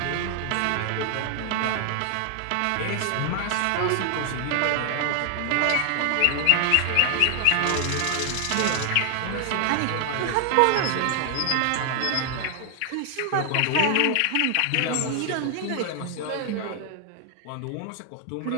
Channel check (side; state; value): both; different; correlation 0.00